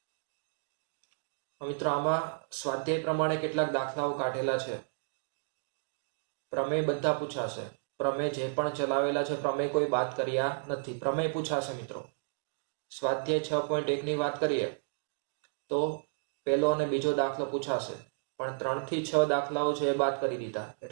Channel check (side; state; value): left; silent; digital silence